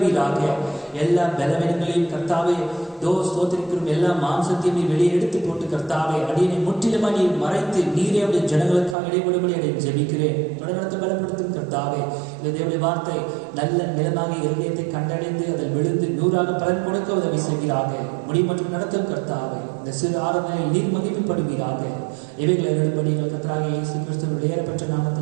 எல்லா பலவீனங்களையும் கர்த்தாவே ஸ்தோத்திரிக்கிறோம். எல்லா மாம்சத்தையும் நீ வெளியே எடுத்து போட்டு கர்த்தாவே அடியனை முற்றிலுமா நீ மறைத்து நீரே அவருடைய ஜனங்களுக்காக இடைபடும்படி அதை ஜெபிக்கிறேன். தொடர்ந்து பலப்படுத்தும் கர்த்தாவே. இந்த தேவனுடைய வார்த்தை நல்ல நிலமாக இருதயத்தை கண்டடைந்து அதில் விழுந்து 100ஆக பலன் கொடுக்க உதவி செய்வீராக. முடி மற்றும் நடத்தும் கர்த்தாவே. இந்த சிறு ஆராதனையில் நீர் மகிமைப்படுவீராக. இவைகளை எழுதும்படி எங்கள் கர்த்தராகிய இயேசு கிறிஸ்துவின் ஏறப்பட்ட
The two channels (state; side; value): drops out; left; at 9.0 s